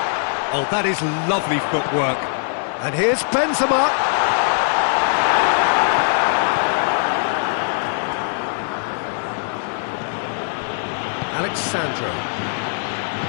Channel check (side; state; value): right; silent; digital silence